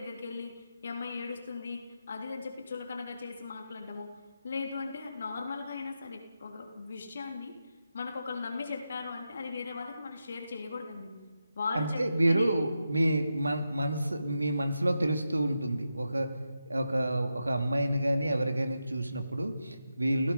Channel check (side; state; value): both; inverted; correlation -0.88